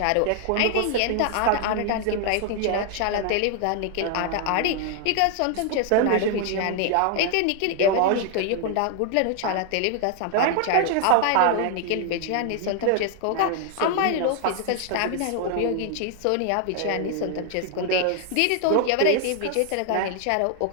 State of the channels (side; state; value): both; different; correlation 0.00